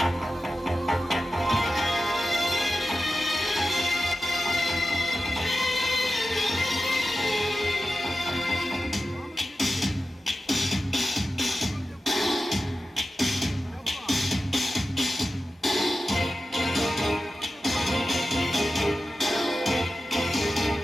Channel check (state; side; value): normal; both; correlation 0.93